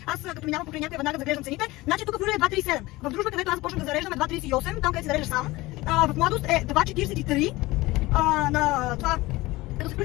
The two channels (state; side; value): quieter; right; 19.9 dB